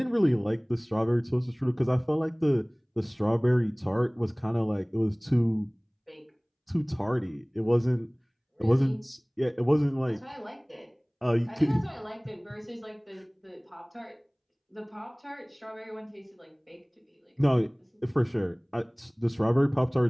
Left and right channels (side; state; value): both; identical; correlation 1.00